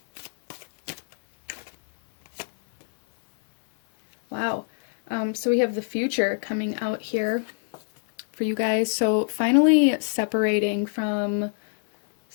Wow. So we have the future coming out here for you guys. So finally separating from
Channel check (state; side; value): silent; right; 62 dB below the other